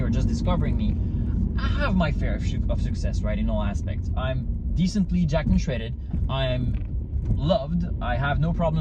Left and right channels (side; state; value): both; identical; correlation 1.00